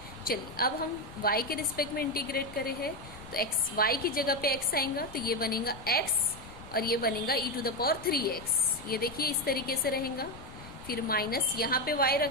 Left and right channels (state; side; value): noise; left; rumble, 17 dB below the sound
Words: चलिए अब हम y के रिस्पेक्ट में इंटीग्रेट करे हैं, तो x y की जगह पे x आएगा तो ये बनेगा x और ये बनेगा e⁻3x, ये देखिए इस तरीके से रहेगा। फिर माइनस यहाँ पे